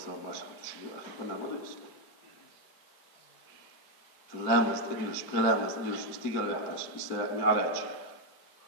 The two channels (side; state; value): right; late; 4.5 ms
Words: ماشي شو اخي كنا ما يصير لامس ادلش بلامس ادلش استيقظ يحتاج يستمع علاج